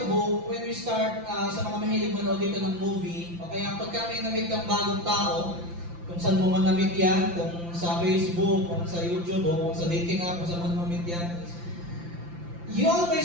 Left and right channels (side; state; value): left; late; 5.8 ms